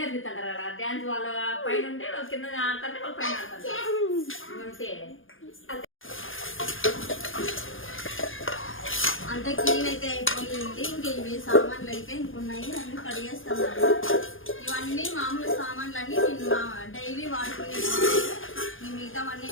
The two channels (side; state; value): right; late; 0.59 ms